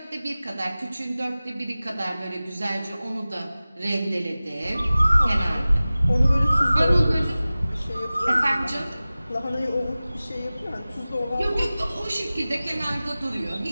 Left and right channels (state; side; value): inverted; both; correlation -0.97